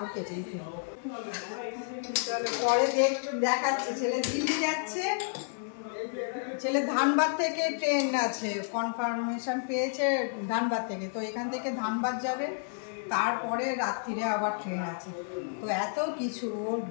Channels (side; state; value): right; silent; 57 dB below the other